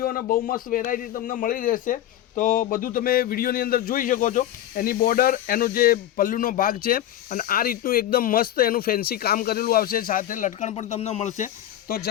અને બહુ મસ્ત વેરાયટી તમને મળી રહેશે. તો બધું તમે વિડીયોની અંદર જોઈ શકો છો. એની બોર્ડર, એનો જે પલ્લુનો ભાગ છે અને આ રીતનું એકદમ મસ્ત એનું ફેન્સી કામ કરેલું આવશે, સાથે લટકણ પણ તમને મળશે. તો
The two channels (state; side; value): quieter; right; 12.5 dB